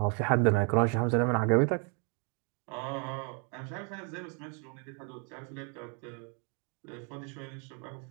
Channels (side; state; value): left; quieter; 38.5 dB